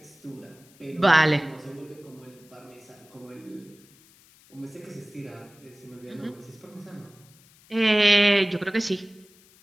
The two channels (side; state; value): left; noise; hiss, 27 dB below the sound